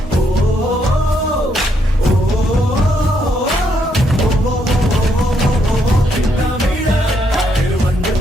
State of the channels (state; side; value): normal; both; correlation 0.75